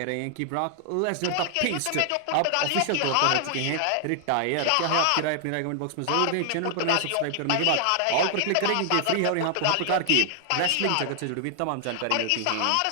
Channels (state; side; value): different; both; correlation 0.00